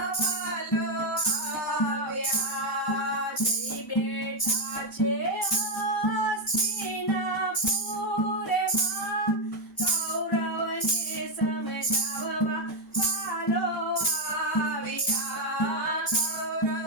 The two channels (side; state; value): both; normal; correlation 0.04